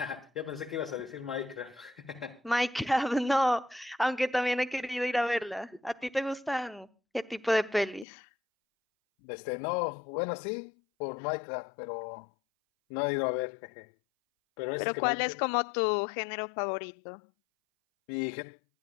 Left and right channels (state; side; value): drops out; right; at 8.1 s